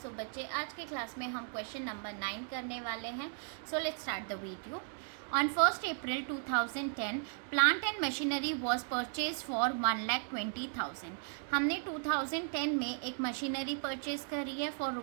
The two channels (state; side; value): silent; left; 54 dB below the other